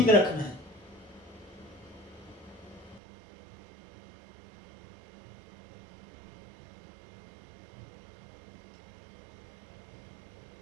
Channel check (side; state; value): left; drops out; at 3.0 s